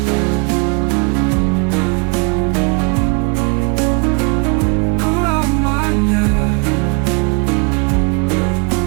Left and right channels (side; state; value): left; quieter; 35.7 dB